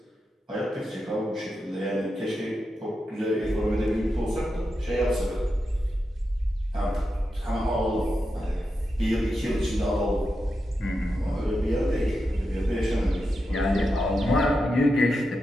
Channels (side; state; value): both; normal; correlation 0.88